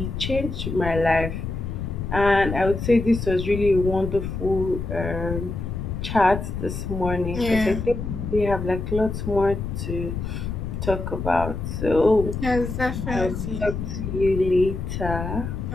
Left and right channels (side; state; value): left; noise; rumble, 5 dB below the sound